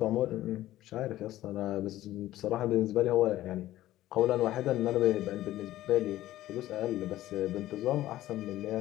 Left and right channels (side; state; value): right; quieter; 14.7 dB